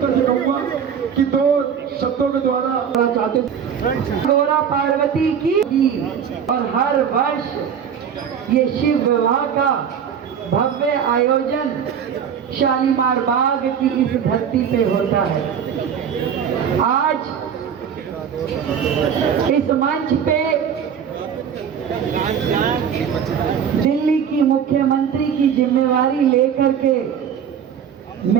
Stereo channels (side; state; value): left; quieter; 7.9 dB